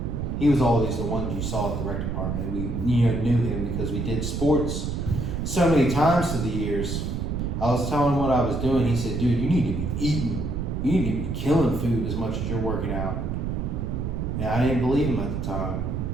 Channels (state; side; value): noise; right; rumble, 2 dB below the sound